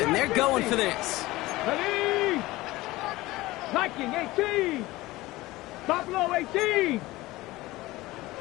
They're going for this. Ready? Viking 18. Buffalo 18.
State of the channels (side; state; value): right; quieter; 18.9 dB